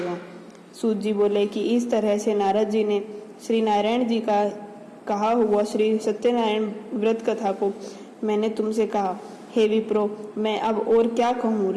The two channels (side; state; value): both; identical; correlation 1.00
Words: सूत जी बोले कि इस तरह से नारद जी ने श्री नारायण जी का कहा हुआ श्री सत्यनारायण व्रत कथा को मैंने तुमसे कहा। हे विप्रो, मैं अब और क्या कहूँ?